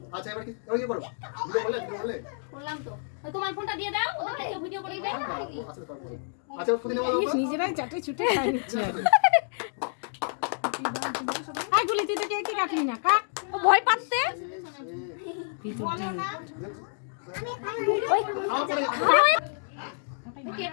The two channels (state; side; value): silent; right; digital silence